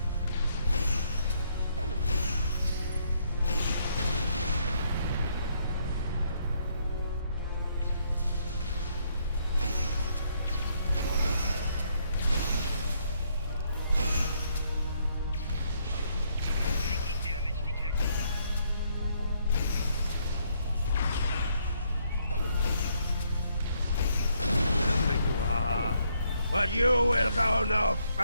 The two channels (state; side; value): inverted; both; correlation -0.72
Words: But you will go no